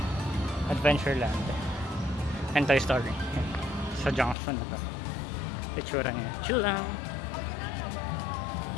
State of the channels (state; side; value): drops out; right; at 4.4 s